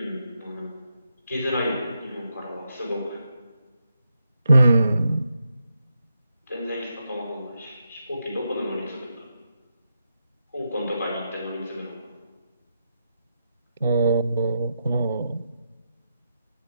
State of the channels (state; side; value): inverted; both; correlation -0.84